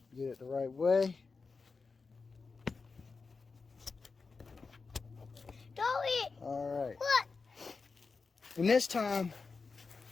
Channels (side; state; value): right; quieter; 4.5 dB